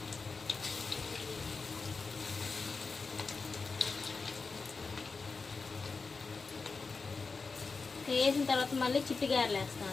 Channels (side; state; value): right; quieter; 4.4 dB